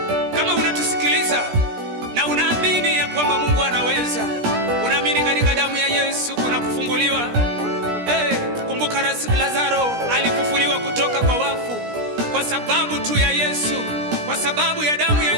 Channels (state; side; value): late; left; 17 ms